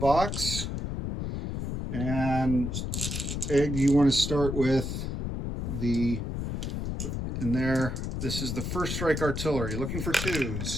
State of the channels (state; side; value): noise; left; rumble, 3 dB below the sound